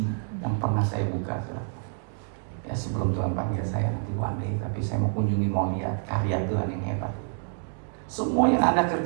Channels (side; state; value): left; silent; 60 dB below the other